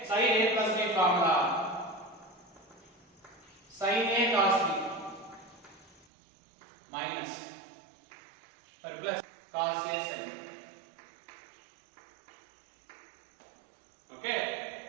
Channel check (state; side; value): drops out; left; at 6.1 s